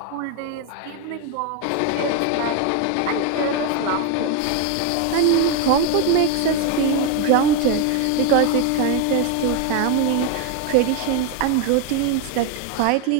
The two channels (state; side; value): different; both; correlation 0.01